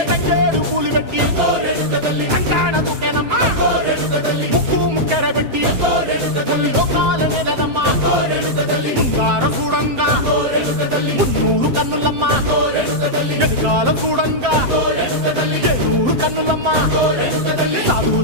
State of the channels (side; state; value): left; late; 7.7 ms